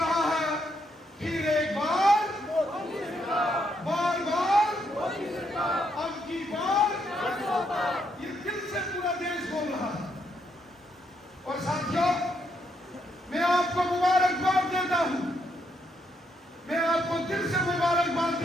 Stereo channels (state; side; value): normal; both; correlation 0.76